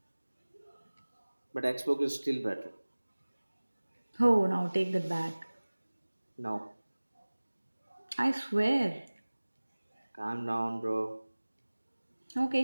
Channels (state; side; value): inverted; both; correlation -1.00